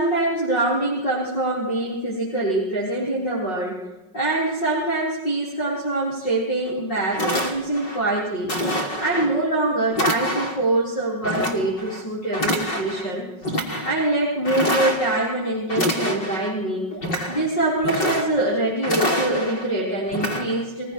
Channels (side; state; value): right; late; 5.4 ms